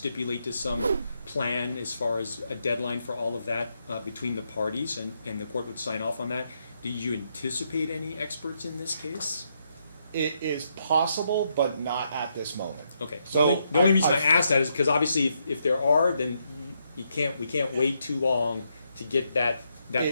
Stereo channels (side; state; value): both; inverted; correlation -0.79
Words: to some plan as far as a deadline for all of that between the parties, and the court would sign off on that. Do you anticipate any experts in this case? It is possible, but not at this moment. Okay. So the only reason I asked that is because obviously if there are, then we can't wait too long to get that